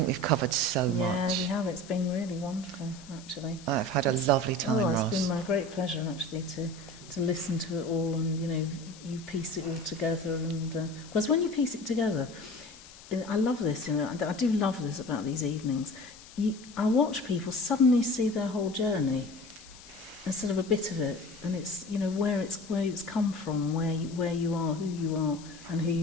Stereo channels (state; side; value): noise; left; hiss, 20 dB below the sound